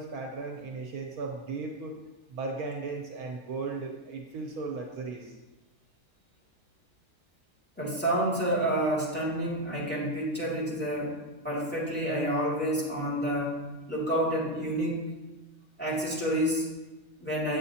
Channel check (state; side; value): normal; both; correlation 0.09